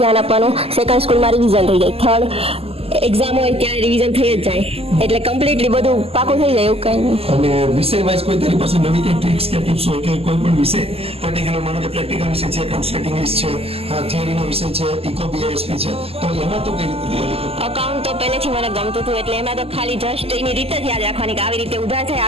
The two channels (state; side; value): late; left; 0.29 ms